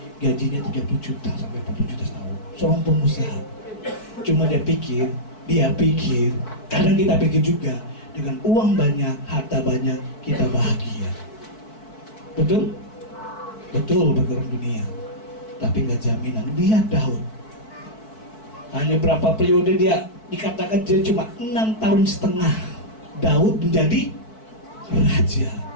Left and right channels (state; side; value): late; right; 4.6 ms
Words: gajinya 30 juta sampai 40 juta setahun. Seorang pengusaha. Cuma dia pikir, kadang kita pikir juga, dengan uang banyak, harta banyak, kita bahagia. Betul? Betul bagi orang dunia. Tapi nggak jaminan. Lihat Daud. Hanya berapa periode dia, dikatakan dia cuma 6,5 tahun Daud menjadi raja.